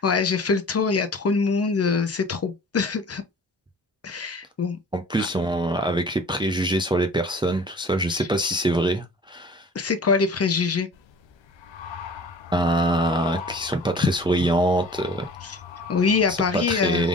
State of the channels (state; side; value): normal; both; correlation 0.44